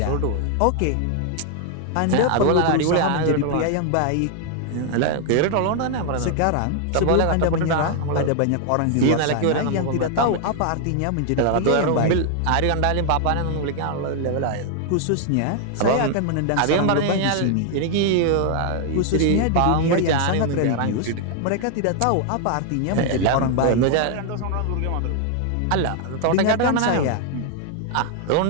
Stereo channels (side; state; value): both; different; correlation 0.00